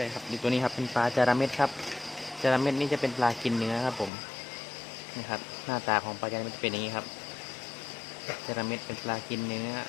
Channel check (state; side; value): drops out; right; at 4.1 s